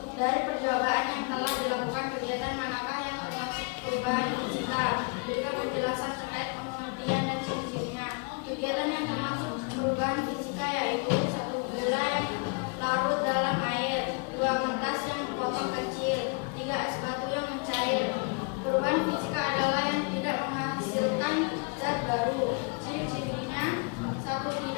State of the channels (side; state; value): right; quieter; 33.8 dB